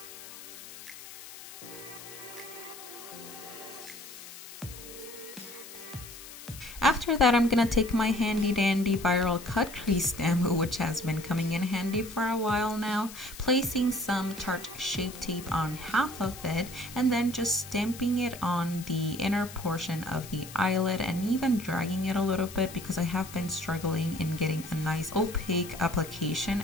After that, I'm gonna take my handy dandy viral cut crease stem, which has been coming in handy for a while now, placing some Tarte Shape Tape on half of it, and then just stamping it on the inner portion of the eyelid and even dragging it a little bit because I have been struggling in getting a nice opaque application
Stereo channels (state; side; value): noise; left; hiss, 15 dB below the sound